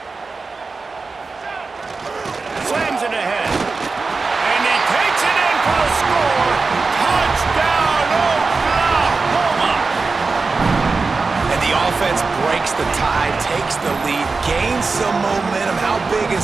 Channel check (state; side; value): quieter; left; 4.2 dB